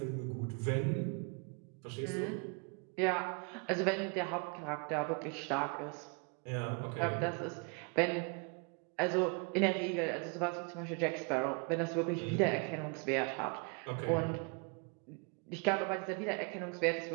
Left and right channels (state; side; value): quieter; left; 34.0 dB